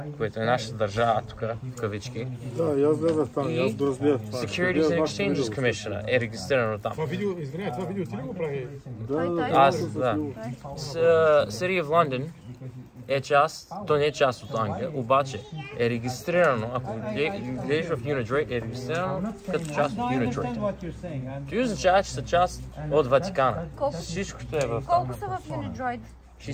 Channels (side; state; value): both; identical; correlation 1.00